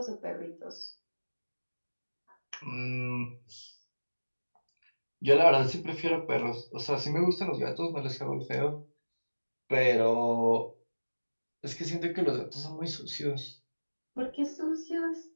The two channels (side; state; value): both; inverted; correlation -1.00